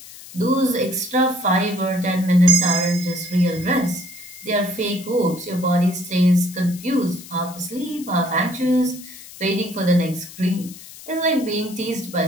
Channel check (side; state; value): left; noise; hiss, 17 dB below the sound